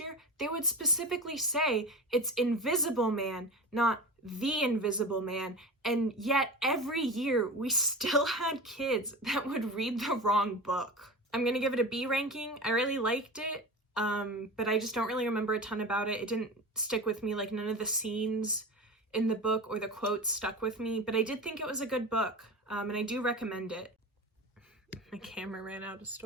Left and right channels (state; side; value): normal; both; correlation 0.29